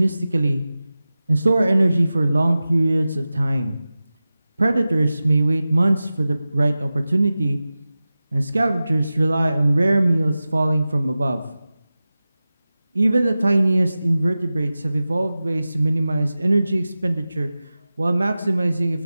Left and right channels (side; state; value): both; inverted; correlation -0.95